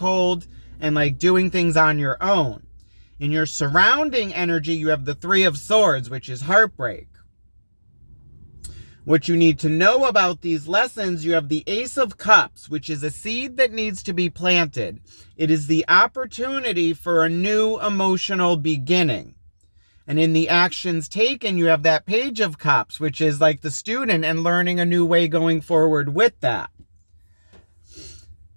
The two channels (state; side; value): inverted; both; correlation -1.00